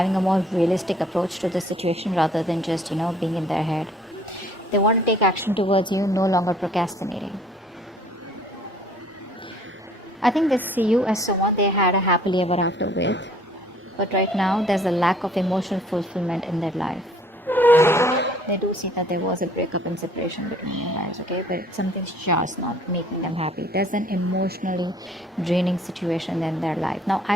a more realistic approach to the situation rather than just, being in their head. They want to take action towards you, no longer procrastinating. I think they see you as someone they had a happily ever after with. But right now, there's a lack of emotional fulfillment in their life. They do see that there was a breakup and separation between you guys, okay? But something's just not making them happy. There's an emotionally draining situation in their life. Now,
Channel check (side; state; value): both; normal; correlation 0.57